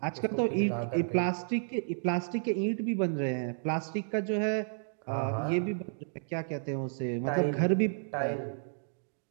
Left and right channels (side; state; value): left; silent; digital silence